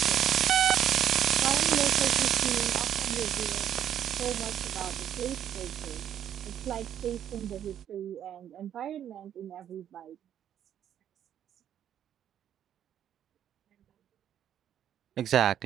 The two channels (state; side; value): quieter; left; 10.1 dB